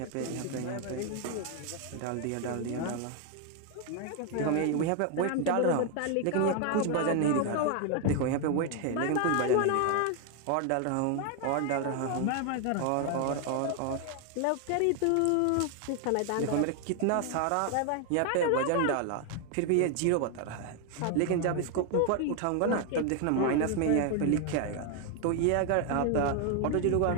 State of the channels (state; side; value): different; both; correlation 0.01